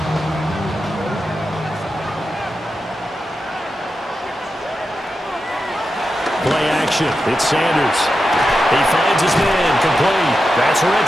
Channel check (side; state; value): both; normal; correlation 0.90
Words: Play action. It's Sanders. He finds his man complete. That's